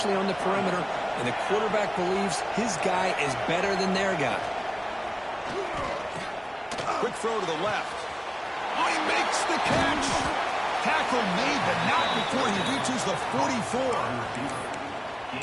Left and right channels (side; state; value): both; identical; correlation 1.00